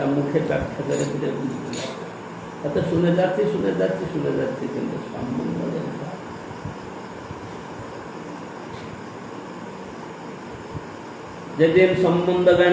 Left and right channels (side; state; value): both; identical; correlation 1.00